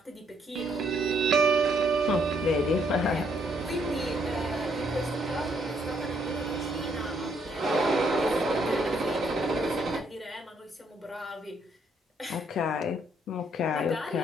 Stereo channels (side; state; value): both; normal; correlation 0.71